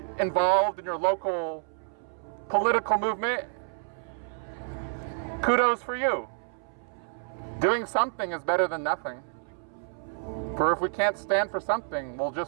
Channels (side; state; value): left; silent; 59 dB below the other